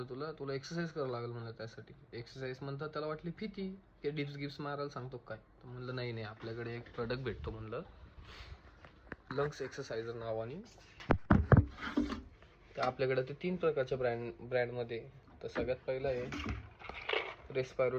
तुला एक्सरसाइज करावं लागेल म्हणलं. त्यासाठी एक्सरसाइज म्हणतात त्याला वाटली भीती की डिप्स गिप्स मारायला सांगतो काय. तर म्हणलं नाही आपल्याकडे एक प्रोडक्ट भेटतो म्हणलं, लंग्स एक्सरसाइजर नावाने. तर आपल्याकडे ते 3 प्रकारच्या ब्रँडमध्ये. तर सगळ्यात पहिला आहे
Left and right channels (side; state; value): both; identical; correlation 1.00